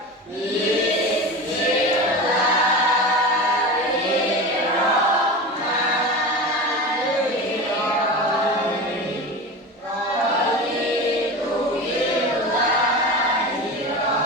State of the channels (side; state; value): both; normal; correlation 0.28